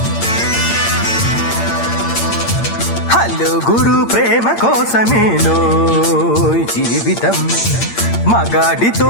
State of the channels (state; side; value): late; right; 8.7 ms